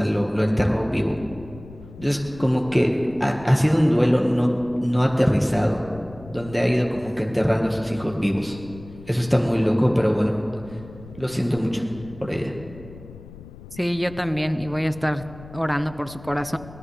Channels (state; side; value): noise; left; rumble, 18 dB below the sound